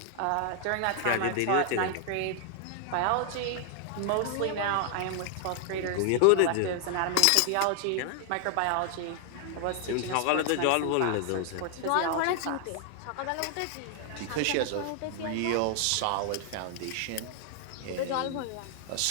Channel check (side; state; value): both; different; correlation 0.00